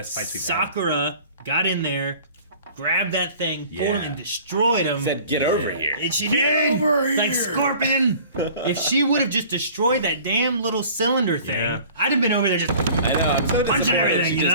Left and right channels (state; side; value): inverted; both; correlation -0.47